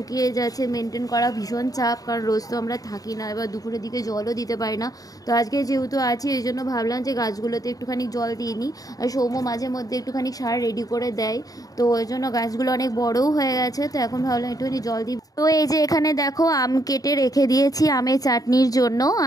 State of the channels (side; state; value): right; late; 0.18 ms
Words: যাচ্ছে, মেনটেন করা ভীষণ চাপ, কারণ রোজ তো আমরা থাকি না, এবার দুপুরের দিকে জলও দিতে পারি না। তো আজকে যেহেতু আছি, এই জন্য ভাবলাম যে গাছগুলোতে একটুখানি জল দিয়ে নিই। আর সৌম্য মাঝে মধ্যে একটুখানি সার রেডি করে দেয়, তো ওই জন্য গাছগুলো অনেক বড়ও হয়ে গেছে। তো এখন ভাবলাম একটুখানি জল দিই। তো এই যে এখানে দেখো আম কেটে রেখে দিয়েছি আমের চাটনির জন্য,